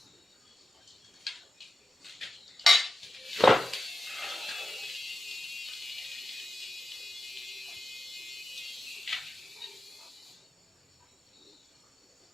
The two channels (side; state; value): both; normal; correlation 0.92